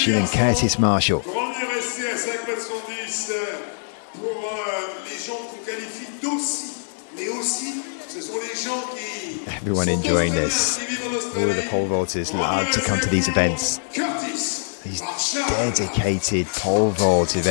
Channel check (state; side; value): silent; right; digital silence